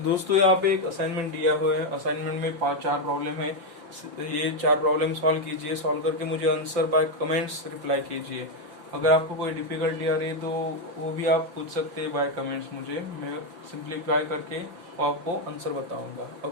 दोस्तों यहाँ पे एक असाइनमेंट दिया हुआ है। असाइनमेंट में 4 प्रॉब्लम है। ये 4 प्रॉब्लम सॉल्व कीजिए। सॉल्व करके मुझे आंसर बाय कमेंट्स रिप्लाई कीजिए। अगर आपको कोई डिफिकल्टी आ रही है तो वो भी आप पूछ सकते हैं बाय कमेंट्स मुझे। मैं सिंप्लीफाई करके आपको आंसर बताऊंगा।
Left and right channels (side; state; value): left; late; 5.7 ms